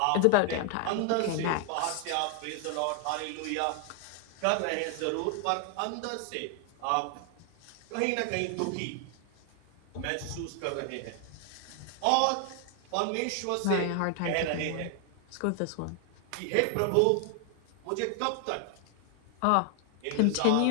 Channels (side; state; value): both; different; correlation 0.00